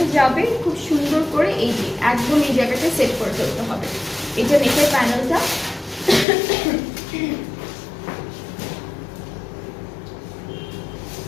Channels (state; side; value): drops out; right; at 6.2 s